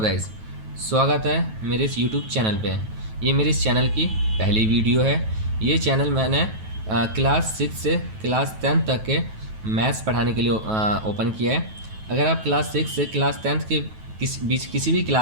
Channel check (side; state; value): left; late; 9.2 ms